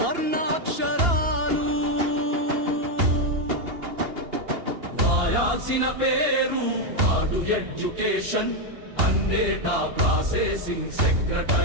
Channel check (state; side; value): late; left; 2.8 ms